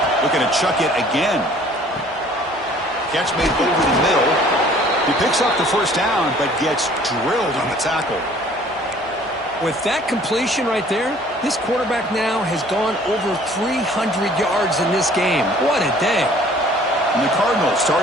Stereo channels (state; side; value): normal; both; correlation 0.54